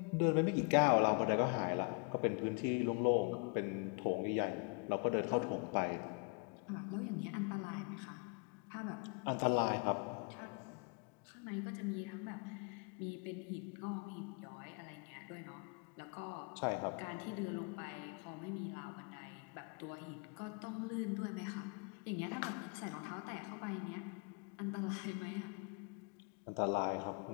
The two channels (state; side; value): quieter; right; 35.8 dB